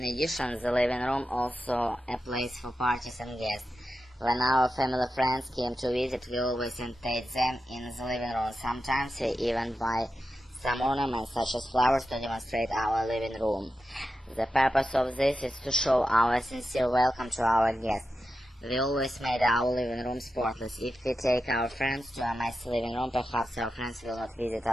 addition, the living room also a place for parties and guests. When our family friends came to visit, we always entertained them in the living room. Sometimes we even buy some ornaments such as flowers to demonstrate our living room. The purpose of this is to show our sincere welcome to our guests. We always made our living room spotless. If we take our friends to a messy living room, perhaps our friends will not visit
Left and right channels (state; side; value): normal; both; correlation 0.90